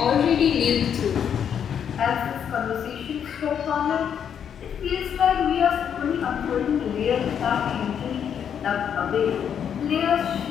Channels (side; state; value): right; quieter; 8.3 dB